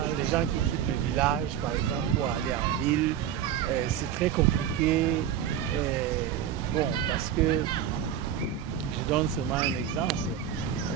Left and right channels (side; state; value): left; quieter; 9.6 dB